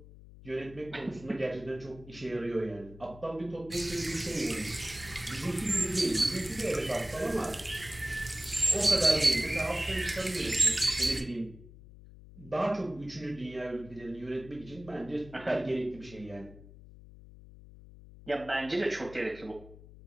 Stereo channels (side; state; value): left; noise; hum, 18 dB below the sound